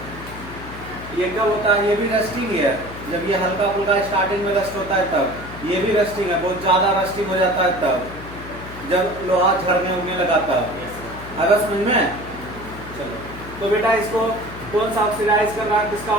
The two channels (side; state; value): left; noise; hum, 13 dB below the sound